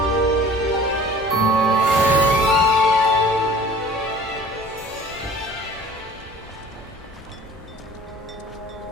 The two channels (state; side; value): normal; both; correlation 0.45